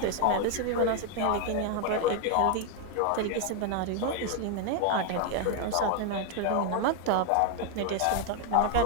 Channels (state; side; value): different; both; correlation 0.01